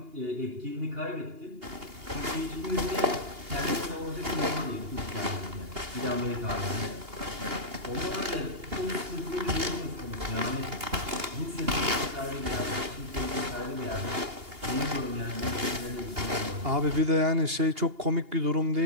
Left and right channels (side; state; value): left; late; 2.8 ms